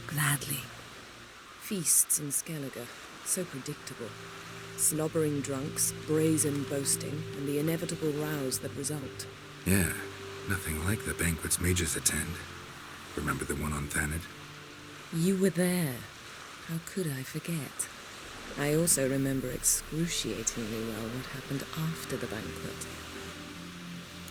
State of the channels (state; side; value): identical; both; correlation 1.00